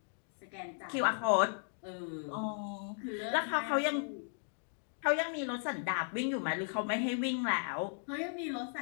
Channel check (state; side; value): silent; right; digital silence